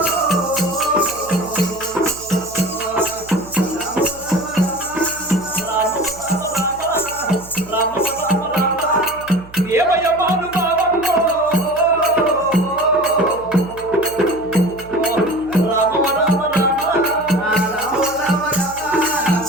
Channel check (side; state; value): right; noise; hum, 19 dB below the sound